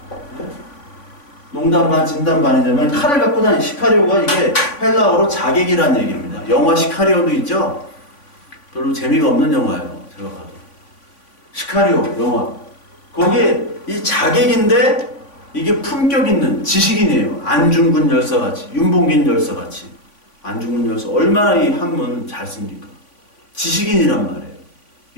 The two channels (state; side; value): late; right; 3.5 ms